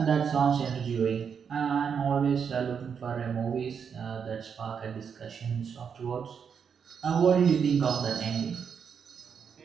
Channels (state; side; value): quieter; left; 6.8 dB